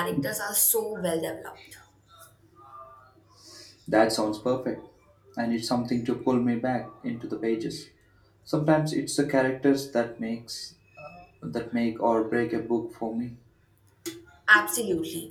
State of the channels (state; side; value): identical; both; correlation 1.00